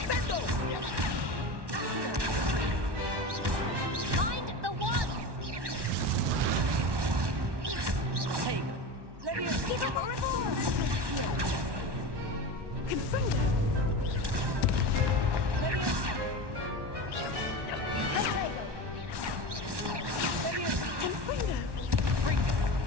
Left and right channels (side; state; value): left; late; 1.1 ms